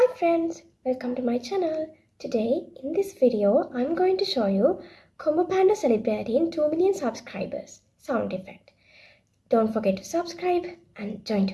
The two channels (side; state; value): both; identical; correlation 1.00